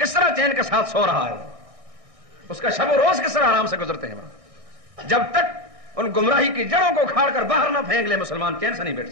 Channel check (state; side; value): late; left; 1.6 ms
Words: طرح چین کے ساتھ سو رہا ہے، اس کا شب و روز کس طرح آرام سے گزرتے ہیں وہاں. جب تک ان گمراہی کی جڑوں کو کھاڑ کر باہر نہ پھینک لے مسلمان چین سے نہیں بیٹھ